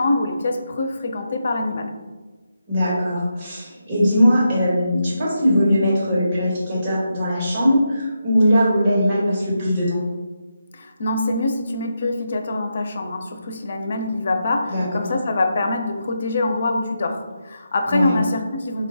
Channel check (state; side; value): inverted; both; correlation -0.85